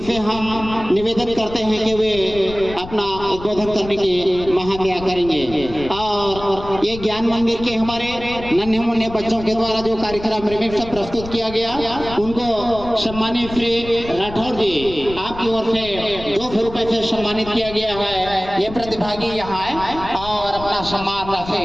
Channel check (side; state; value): left; noise; rumble, 13 dB below the sound